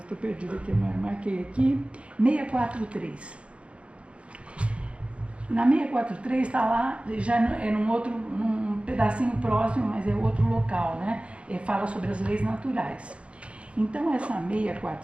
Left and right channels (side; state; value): left; late; 0.060 ms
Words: Estou perdida aqui, marquei aqui. 643. Na 643 está lá, já é num pedacinho próximo, mas é outro local, né? Fala sobre as leis naturais. Então, essa